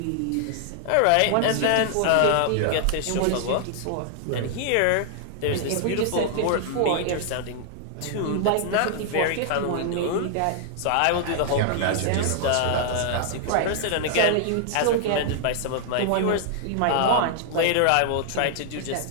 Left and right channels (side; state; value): both; different; correlation -0.01